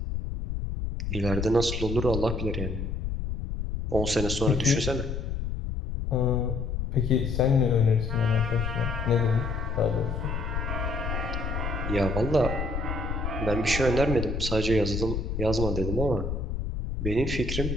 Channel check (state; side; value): noise; left; rumble, 3 dB below the sound